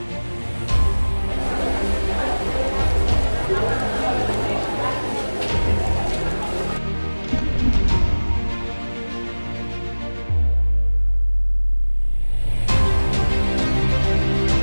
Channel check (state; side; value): inverted; both; correlation -1.00